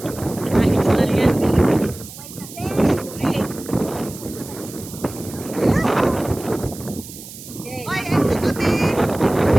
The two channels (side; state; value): right; noise; hiss, 15 dB below the sound